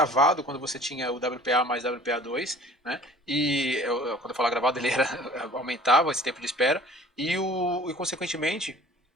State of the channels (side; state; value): both; normal; correlation 0.48